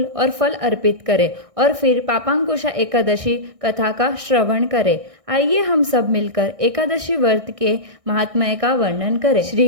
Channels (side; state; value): left; late; 1.6 ms